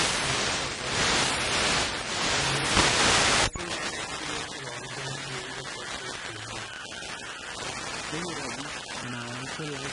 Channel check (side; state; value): both; identical; correlation 1.00